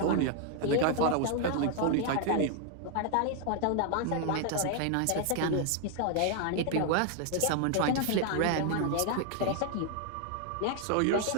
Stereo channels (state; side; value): different; both; correlation 0.00